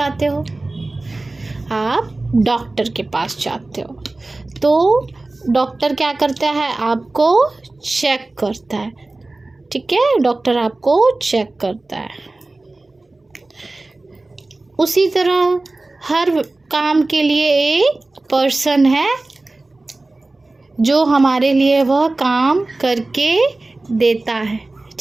आप डॉक्टर के पास जाते हो। तो डॉक्टर क्या करता है? आपको चेक करता है। ठीक है, डॉक्टर आपको चेक करता है। उसी तरह हर काम के लिए एक पर्सन है जो हमारे लिए वह काम करके देता है।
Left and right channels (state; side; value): quieter; left; 3.0 dB